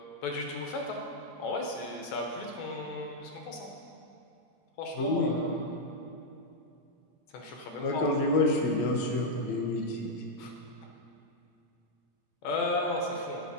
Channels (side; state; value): right; late; 8.7 ms